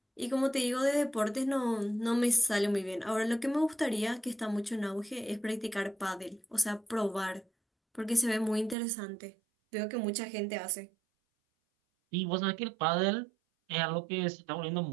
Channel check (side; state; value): left; drops out; at 8.8 s